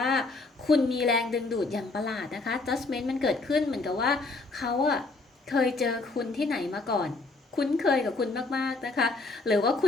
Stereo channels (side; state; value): right; quieter; 3.5 dB